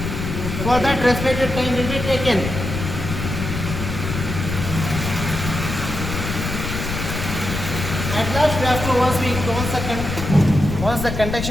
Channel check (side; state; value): left; noise; rumble, 5 dB below the sound